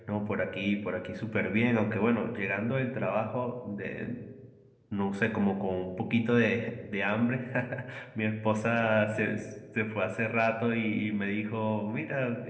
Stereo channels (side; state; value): both; identical; correlation 1.00